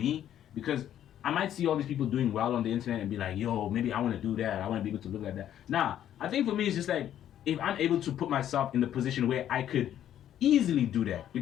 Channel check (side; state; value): right; quieter; 10.9 dB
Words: because I might see all these people doing well on the internet and be like, yo, maybe I want to do that. I want to be able to look like that. Nah, I think for me, it's just like if I'm able to put myself in the position where I could easily do that,